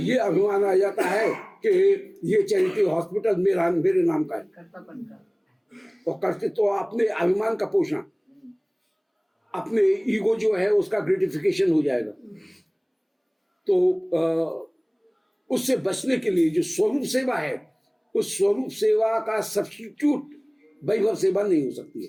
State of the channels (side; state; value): both; identical; correlation 1.00